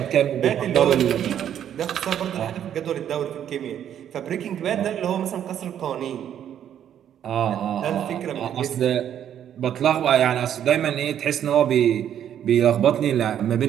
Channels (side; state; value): left; quieter; 9.9 dB